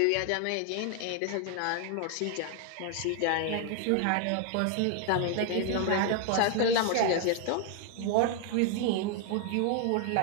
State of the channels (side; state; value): both; different; correlation 0.01